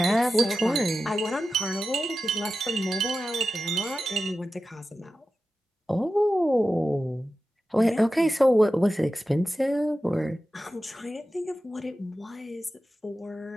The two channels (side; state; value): both; normal; correlation 0.93